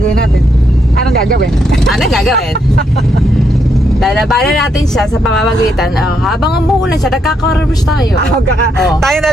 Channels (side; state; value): both; normal; correlation 0.77